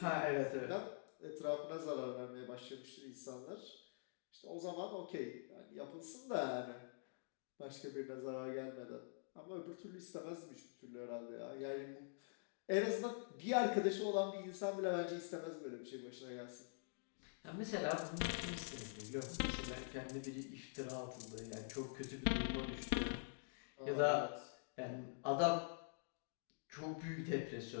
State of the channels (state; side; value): silent; right; digital silence